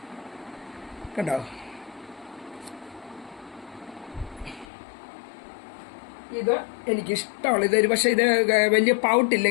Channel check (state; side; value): drops out; right; at 4.7 s